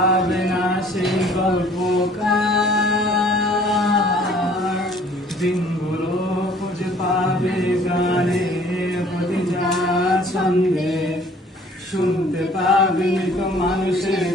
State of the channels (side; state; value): both; normal; correlation 0.55